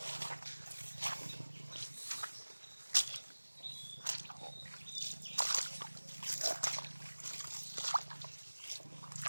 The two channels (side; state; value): both; inverted; correlation -1.00